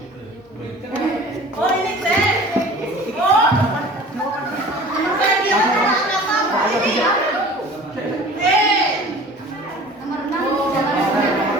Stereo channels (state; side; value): normal; both; correlation 0.43